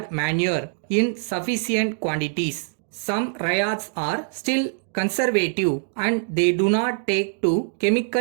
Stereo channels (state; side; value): silent; left; digital silence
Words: manure in sufficient quantities. Some ryots are still conservative and they do not take to